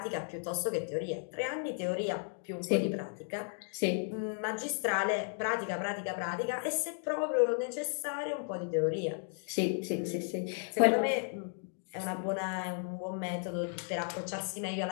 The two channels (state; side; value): silent; right; 55 dB below the other